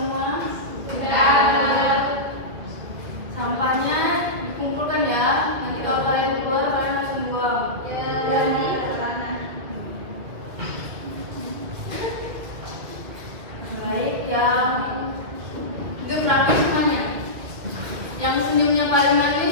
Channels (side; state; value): left; late; 2.3 ms